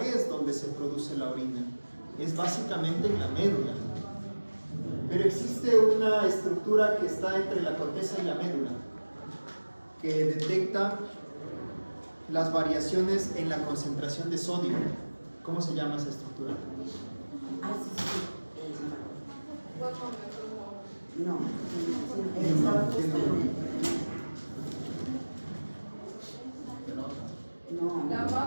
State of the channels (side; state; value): both; inverted; correlation -1.00